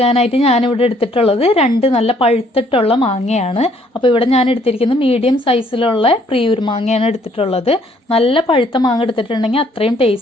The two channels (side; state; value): both; normal; correlation 0.64